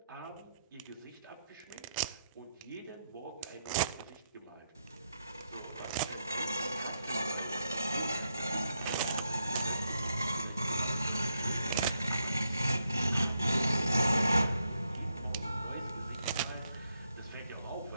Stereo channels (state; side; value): inverted; both; correlation -0.80